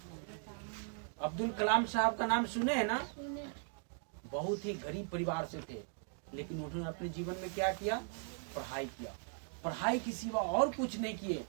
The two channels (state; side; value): silent; left; 52 dB below the other